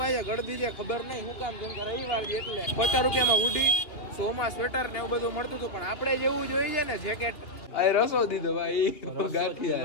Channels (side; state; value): right; late; 3.0 ms